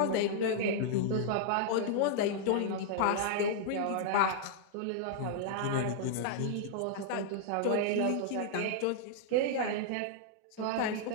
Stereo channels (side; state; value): both; different; correlation -0.01